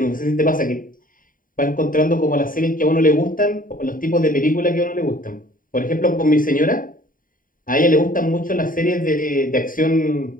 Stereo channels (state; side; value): late; right; 0.40 ms